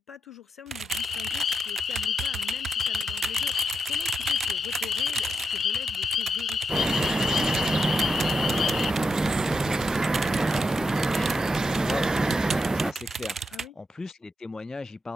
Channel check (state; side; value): normal; both; correlation 0.84